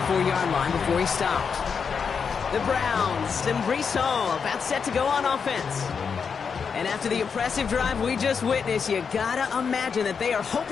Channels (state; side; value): quieter; right; 6.1 dB